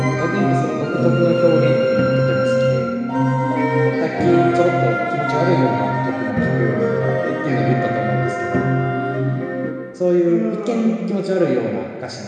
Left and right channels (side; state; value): both; identical; correlation 1.00